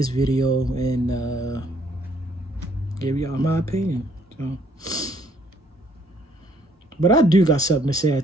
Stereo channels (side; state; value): both; normal; correlation 0.65